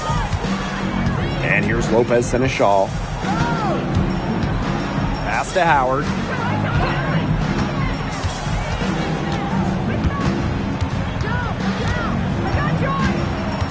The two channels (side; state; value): both; identical; correlation 1.00